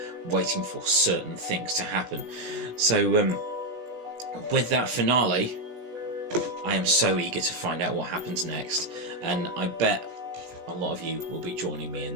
waiting for certain things to happen. So with that finale, I am so eager to find out what happens next, and I bet a lot of you will be joining me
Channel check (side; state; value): left; late; 16 ms